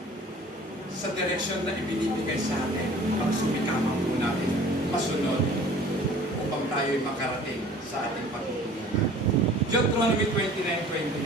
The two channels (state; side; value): normal; both; correlation 0.48